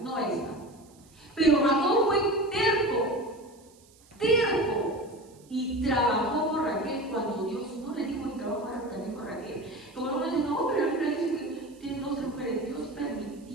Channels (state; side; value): noise; right; hiss, 28 dB below the sound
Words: no esta. Pero Jacob fue terco, y trabajó por Raquel cuando Dios no le dijo que trabajara también por Raquel. Como algunos dicen, no, pero la Biblia dice que tiene 12 mujeres. Dios